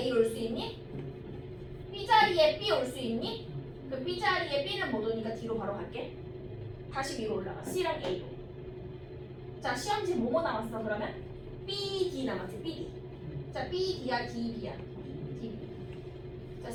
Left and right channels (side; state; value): both; identical; correlation 1.00